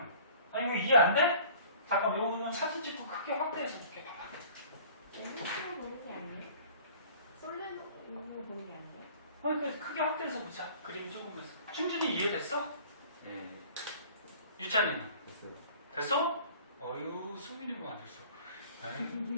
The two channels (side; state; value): both; inverted; correlation -0.48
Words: 아니 이거 이해 안 돼? 잠깐만 이거 사진 찍고 크게 확대해서 볼게. 봐봐. N으로 보는 게 아니에요? 솔레노이드로 보는 게 아니에요? 그러니까 크게 확대해서 보자. 그림 조금해서. 충분히 이해됐어? 네. 유찬이는? 됐어요. 됐어? 어휴, 수민이가 안 됐어.